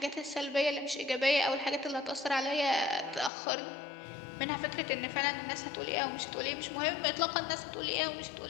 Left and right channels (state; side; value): drops out; right; at 3.3 s